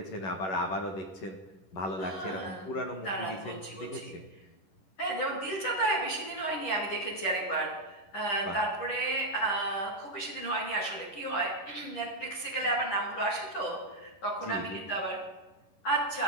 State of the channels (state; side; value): late; right; 11 ms